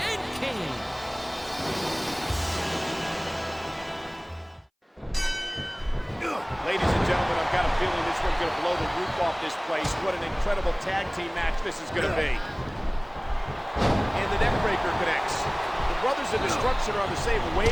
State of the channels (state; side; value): identical; both; correlation 1.00